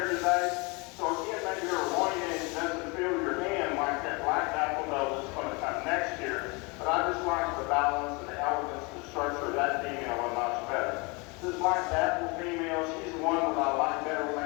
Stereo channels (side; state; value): right; quieter; 28.6 dB